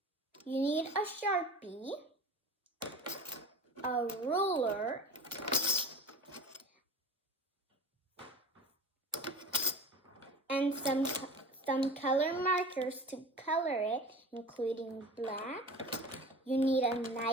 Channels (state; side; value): normal; both; correlation 0.36